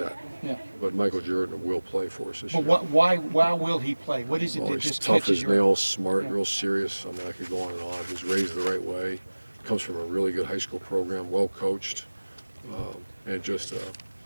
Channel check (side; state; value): both; inverted; correlation -1.00